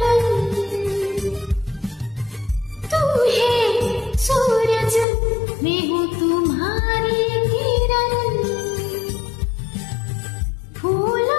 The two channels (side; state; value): right; drops out; at 5.1 s